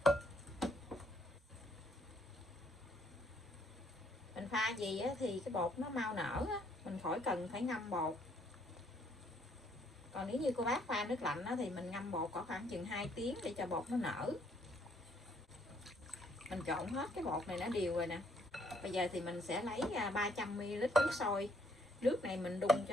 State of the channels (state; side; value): normal; both; correlation 0.67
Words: Mình pha gì thì cái bột nó mau nở, mình khỏi cần phải ngâm bột. Còn nếu như cô bác pha nước lạnh thì mình ngâm bột có khoảng chừng 2 tiếng để cho bột nó nở. Mình trộn hết cái bột này nó đều rồi nè. Bây giờ thì mình sẽ lấy 300ml nước sôi. Nước này mình đun